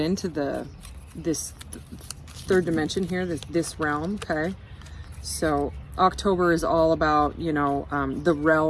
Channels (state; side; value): identical; both; correlation 1.00